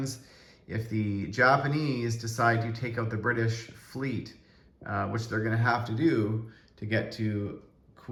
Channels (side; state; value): both; identical; correlation 1.00